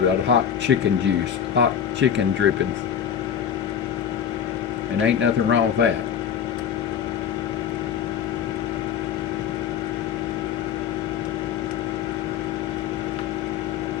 that hot chicken juice, hot chicken drippings. And ain't nothing wrong with that.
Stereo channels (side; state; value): right; quieter; 8.4 dB